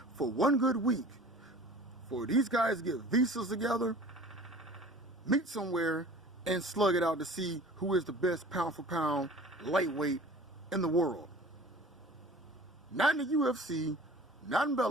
for one good week? For these guys to get visas together, meet somewhere, and slug it out to see who is the best pound for pound lightweight in the world. Not in the UFC, not in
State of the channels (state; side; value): normal; both; correlation 0.44